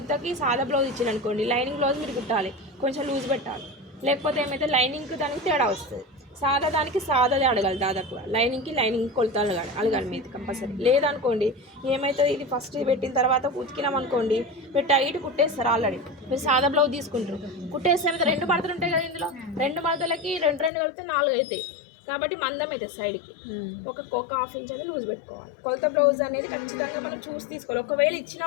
సాదా బ్లౌజ్ ఇచ్చారు అనుకోండి, లైనింగ్ బ్లౌజ్ మీరు కుట్టాలి, కొంచెం లూజ్ పెట్టాలి. లేకపోతే ఏమైతే లైనింగ్కి దానికి తేడా వస్తుంది. సాదా దానికి సాదాదే అడగాలి, దాదాపుగా లైనింగ్ కొలతలు అడగాలి మీరు కంపల్సరీ. లేదనుకోండి ఏమవుతుంది, ఇది ఫస్ట్ పెట్టిన తర్వాత ఉతికినాం అనుకోండి మీరు టైట్ కుట్టేస్తారు. ఆల్రెడీ మీరు సాదా బ్లౌజ్ తీసుకుంటారు, కుట్టేస్తే రెండు మడతలు ఉంటాయి కదా, ఇందులో రెండు మడతలకి రెండు కలిపితే 4 అవుతాయి. కాబట్టి మందం అయితే సైడ్కి ఒక హాఫ్ ఇంచ్ అనేది లూజ్ పెట్టుకోవాలి. కొలత బ్లౌజ్ అనేది ఖచ్చితంగా మనం చూసి తీసుకోవాలి. ఒకవేళ ఇచ్చిన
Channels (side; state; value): right; drops out; at 20.7 s